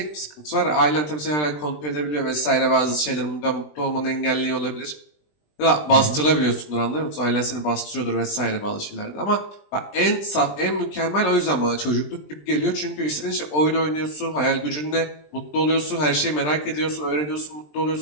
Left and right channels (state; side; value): late; right; 20 ms